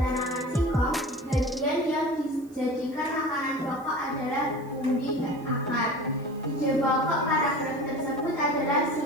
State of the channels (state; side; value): noise; right; hiss, 28 dB below the sound